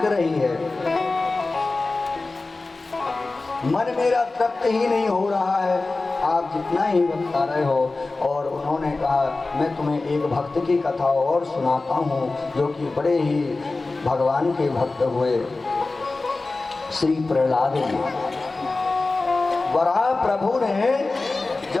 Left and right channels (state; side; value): quieter; right; 3.4 dB